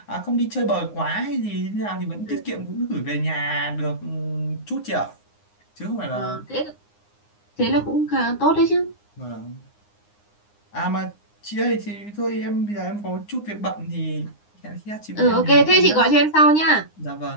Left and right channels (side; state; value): right; late; 9.7 ms